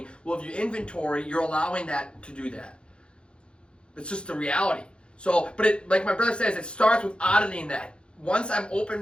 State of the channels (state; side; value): late; right; 0.056 ms